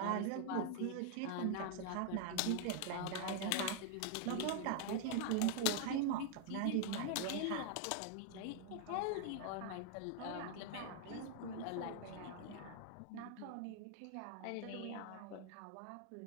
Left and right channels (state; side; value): different; both; correlation 0.00